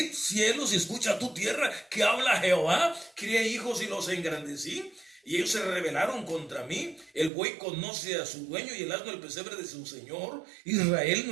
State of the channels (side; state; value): left; drops out; at 7.3 s